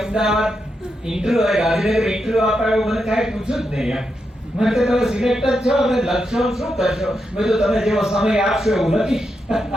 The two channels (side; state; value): both; normal; correlation 0.85